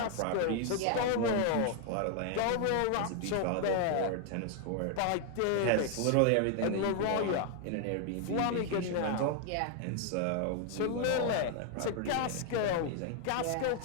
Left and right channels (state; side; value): different; both; correlation 0.00